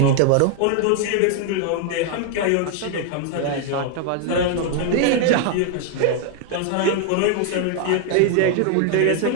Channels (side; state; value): both; different; correlation 0.00